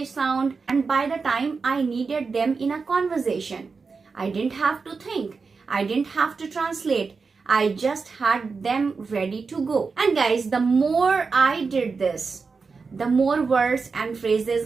sound, and by the time I needed them in a conversation, I didn't have to think. I didn't have to translate. I just had them ready to go. And guys, the more I did this, the more words and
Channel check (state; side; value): quieter; left; 4.7 dB